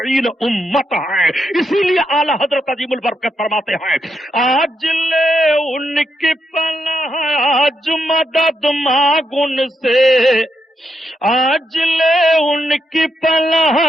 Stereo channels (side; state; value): both; normal; correlation 0.82